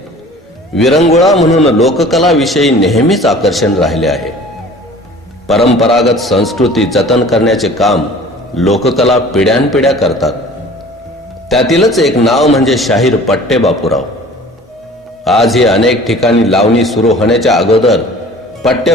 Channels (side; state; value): both; normal; correlation 0.46